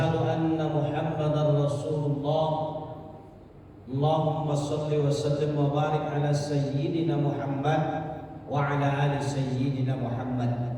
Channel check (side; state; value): both; identical; correlation 1.00